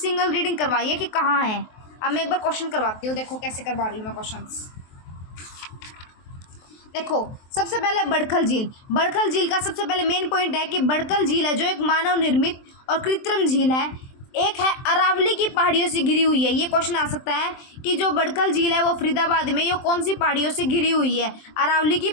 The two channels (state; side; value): late; right; 23 ms